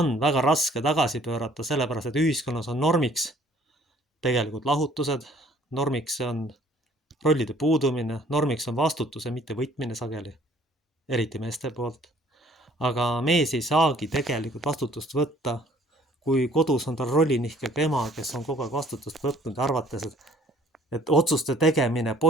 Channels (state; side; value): normal; both; correlation 0.57